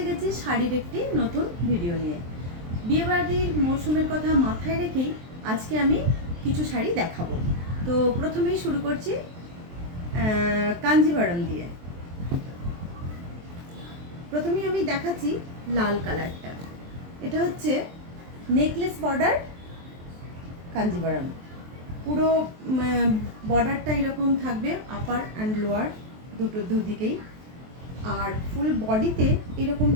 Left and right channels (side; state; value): left; late; 23 ms